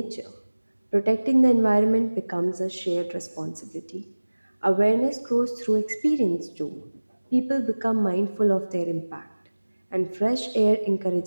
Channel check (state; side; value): inverted; both; correlation -1.00